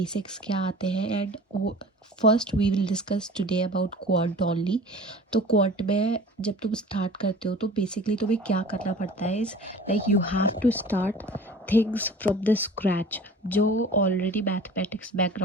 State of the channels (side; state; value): both; normal; correlation 0.42